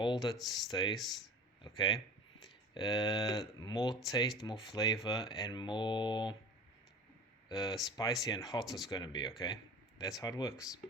it stays. Okay, more taste, more flavor, and more spicy and hot it's going to be. Okay, that's how it works.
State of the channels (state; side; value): normal; both; correlation 0.38